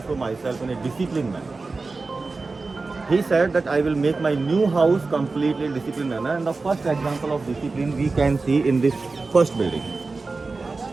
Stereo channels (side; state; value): left; quieter; 3.8 dB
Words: myself in a disciplined manner. He said that I will make my new house completely disciplined manner, and the first example of discipline we can see in this first building.